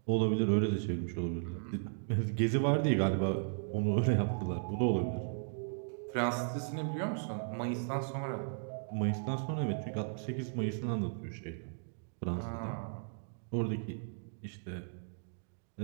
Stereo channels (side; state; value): left; silent; digital silence